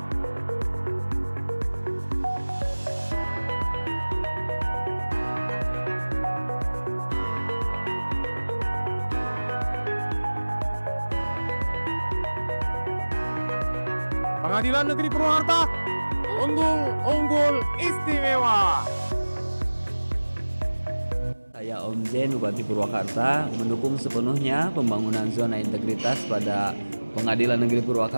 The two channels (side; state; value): both; inverted; correlation -1.00